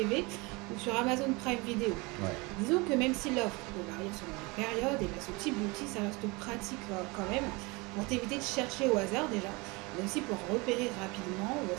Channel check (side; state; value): left; quieter; 26.1 dB